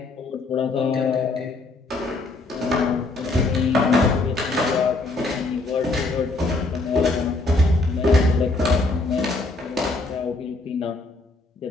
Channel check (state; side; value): quieter; right; 3.2 dB